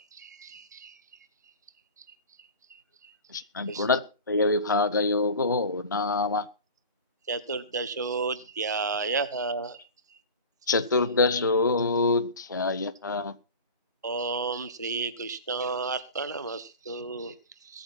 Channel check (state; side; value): inverted; both; correlation -0.34